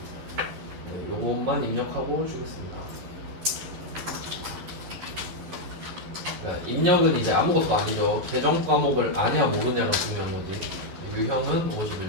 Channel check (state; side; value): late; left; 11 ms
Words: 네, 요것만 입력하고 주겠습니다. 그러니까 입력은 이제 아무것도 아니죠. 계정 과목을 아냐 모르냐가 중요한 거지. 유형은